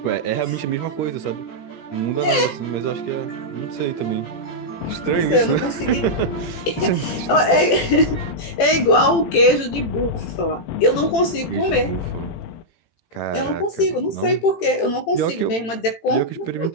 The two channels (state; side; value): late; right; 18 ms